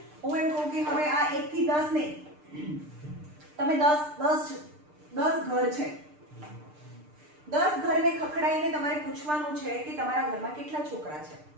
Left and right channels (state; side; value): late; left; 6.7 ms